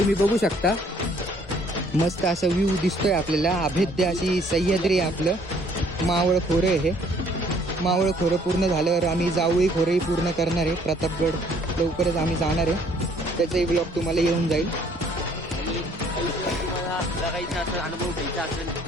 बघू शकता. मस्त असा व्ह्यू दिसतोय आपल्याला. अभेद्य अशी सह्याद्री आहे आपलं. मावळ खोरं आहे हे. मावळ खोरं पूर्ण झाल्यावर आम्ही जावळी खोरंही पूर्ण करणार आहे. प्रतापगड लवकरच आम्ही जाणार आहे. त्याचाही ब्लॉग तुम्हाला येऊन जाईल. अनुभव घ्यायचा असेल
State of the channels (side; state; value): both; normal; correlation 0.61